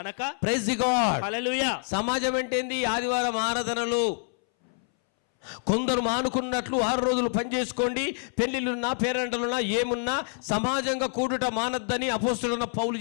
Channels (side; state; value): right; silent; 60 dB below the other